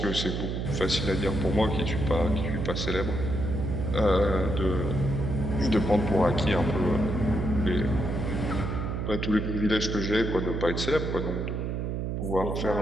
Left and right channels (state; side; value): noise; right; hum, 2 dB below the sound